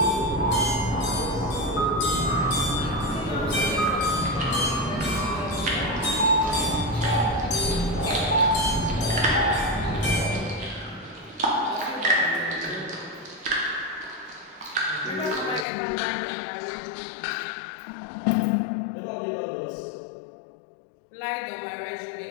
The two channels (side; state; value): right; drops out; at 15.7 s